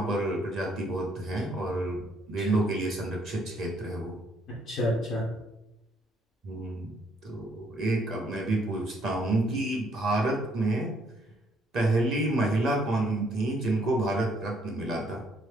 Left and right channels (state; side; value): normal; both; correlation 0.68